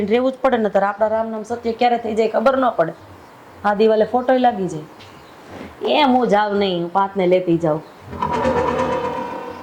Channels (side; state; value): both; identical; correlation 1.00